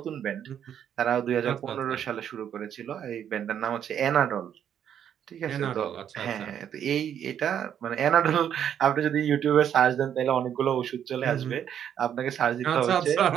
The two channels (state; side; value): quieter; left; 9.3 dB